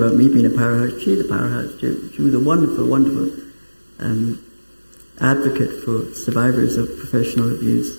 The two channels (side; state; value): both; inverted; correlation -1.00